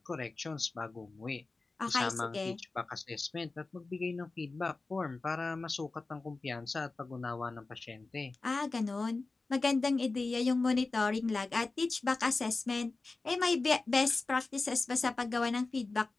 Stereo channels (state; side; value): quieter; right; 3.6 dB